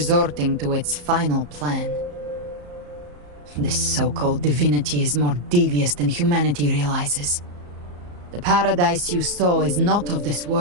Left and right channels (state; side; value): late; left; 34 ms